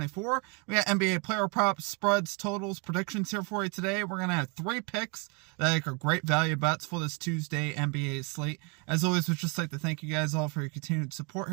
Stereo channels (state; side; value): quieter; left; 33.3 dB